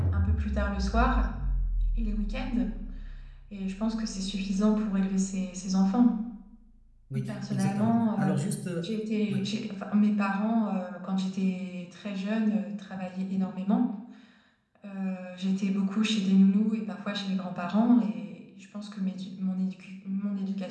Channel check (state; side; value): identical; both; correlation 1.00